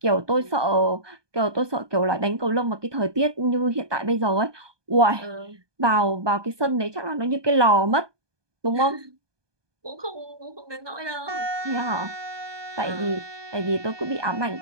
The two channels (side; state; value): left; late; 1.2 ms